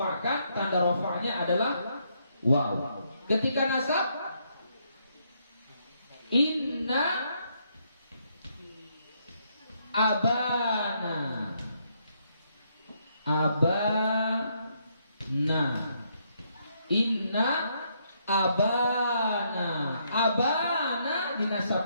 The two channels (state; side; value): inverted; both; correlation -0.74